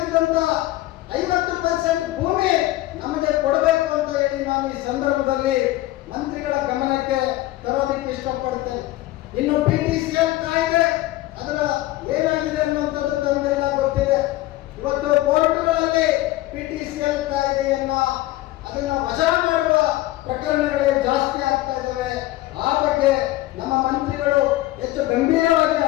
50% ಭೂಮಿ ನಮಗೆ ಕೊಡಬೇಕು ಅಂತ ಹೇಳಿ ನಾನು ಈ ಸಂದರ್ಭದಲ್ಲಿ ಮಂತ್ರಿಗಳ ಗಮನಕ್ಕೆ ತರೋದಕ್ಕೆ ಇಷ್ಟಪಡ್ತೇನೆ. ಇನ್ನು PTCL ಕಾಯ್ದೆ ಅದರ ಏನಾಗಿದೆ ಅನ್ನುವಂಥದ್ದು ತಮಗೆಲ್ಲ ಗೊತ್ತಿದೆ. ಇವತ್ತು ಕೋರ್ಟ್ಗಳಲ್ಲಿ PTCL ಕಾಯ್ದೆಯನ್ನ ಅದನ್ನ ವಜಾ ಮಾಡುವ ಪ್ರಕರಣಗಳೇ ಜಾಸ್ತಿ ಆಗ್ತಾ ಇದ್ದಾವೆ. ಆ ಬಗ್ಗೆ ನಮ್ಮ ಮಂತ್ರಿಗಳು ಹೆಚ್ಚು ಗಂಭೀರವಾಗಿ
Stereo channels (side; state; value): right; quieter; 16.9 dB